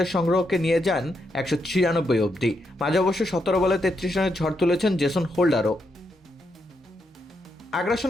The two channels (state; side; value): normal; both; correlation 0.81